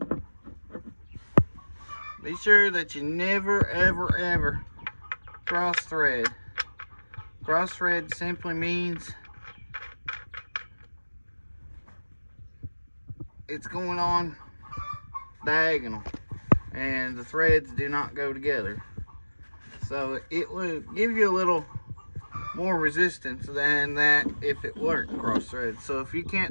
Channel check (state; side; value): inverted; both; correlation -1.00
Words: Be sure that you never ever cross thread. Cross thread simply means it's going on diagonal, and the threads do not go together. So it will give you a little more resistance than that if it weren't cross thread. So if you